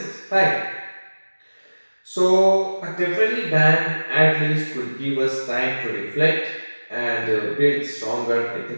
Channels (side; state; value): both; inverted; correlation -1.00